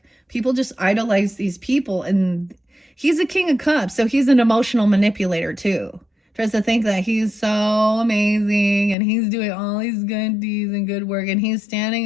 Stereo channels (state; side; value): drops out; right; at 9.0 s